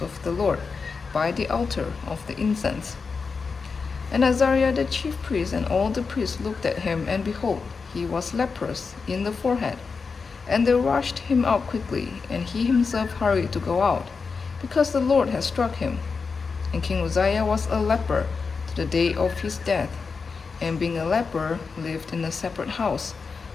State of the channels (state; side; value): quieter; right; 4.9 dB